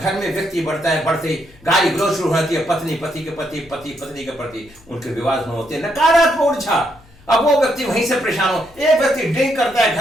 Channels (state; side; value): noise; left; hum, 27 dB below the sound